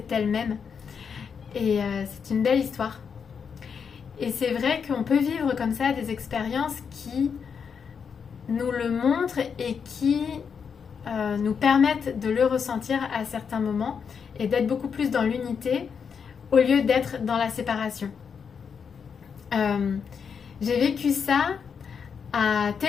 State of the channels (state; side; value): quieter; right; 6.5 dB